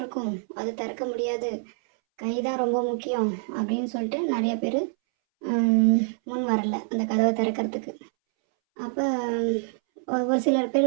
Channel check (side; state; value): left; silent; 61 dB below the other